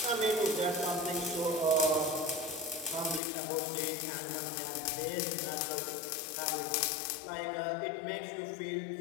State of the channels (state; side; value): drops out; right; at 3.2 s